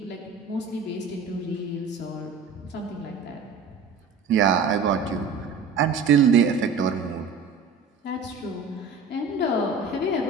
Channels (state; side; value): quieter; left; 4.8 dB